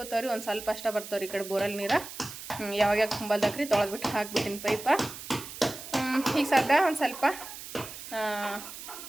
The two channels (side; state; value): right; noise; hiss, 12 dB below the sound